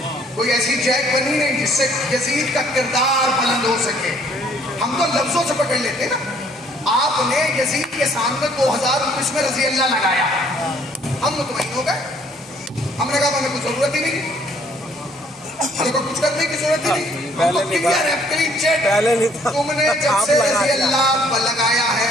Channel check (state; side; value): normal; both; correlation 0.61